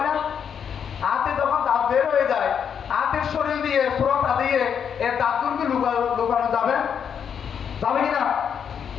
না, আতি যখন দাঁত বের হয়ে যায়, আতির শরীর দিয়ে সুরতা দিয়ে এর দাঁতগুলোকে লুকানো যাবে যাবে কিনা?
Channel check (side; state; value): right; quieter; 7.7 dB